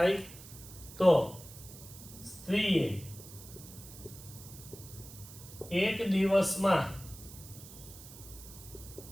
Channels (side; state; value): right; noise; hiss, 16 dB below the sound